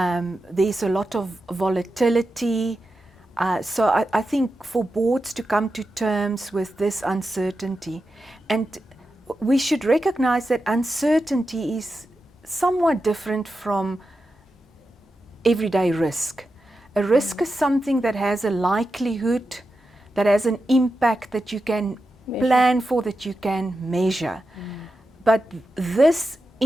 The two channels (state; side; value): normal; both; correlation 0.90